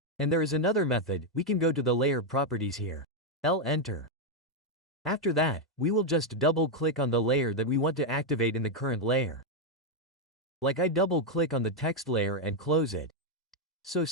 And there is another method, we can go to the layer properties here. Enter. After that, we will just double click on the layer that we want to activate in the current layer. Like I double click on the text layer and close it. So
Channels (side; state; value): both; normal; correlation 0.02